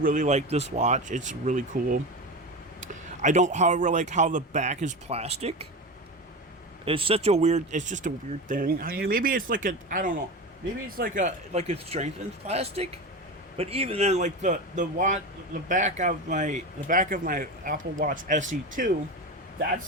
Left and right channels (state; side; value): normal; both; correlation 0.24